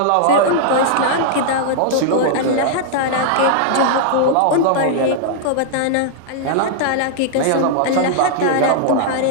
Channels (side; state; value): both; different; correlation -0.01